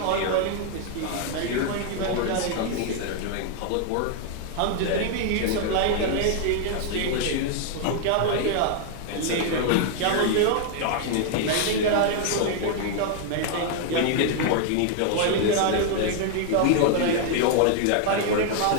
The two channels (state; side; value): different; both; correlation 0.00